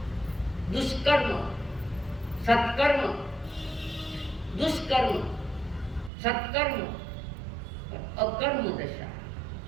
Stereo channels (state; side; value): drops out; left; at 6.1 s